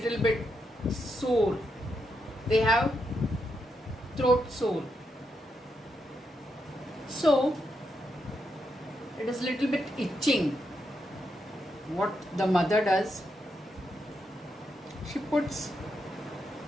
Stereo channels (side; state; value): both; normal; correlation 0.82